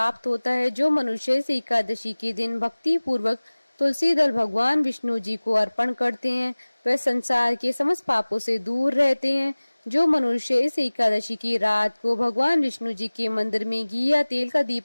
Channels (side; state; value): both; inverted; correlation -1.00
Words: होता है। जो मनुष्य इस एकादशी के दिन भक्ति पूर्वक तुलसी दल भगवान विष्णु जी को अर्पण करते हैं, वे संसार के समस्त पापों से दूर रहते हैं। जो मनुष्य इस एकादशी की रात को भगवान विष्णु जी के मंदिर में घी या तेल का